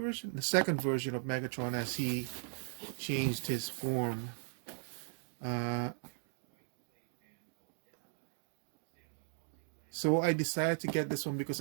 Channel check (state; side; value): silent; left; 53 dB below the other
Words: the second version of Megatron as he changed his form. So I decided to get this one because